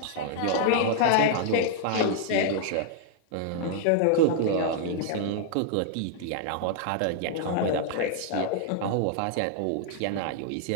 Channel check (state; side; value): different; both; correlation 0.00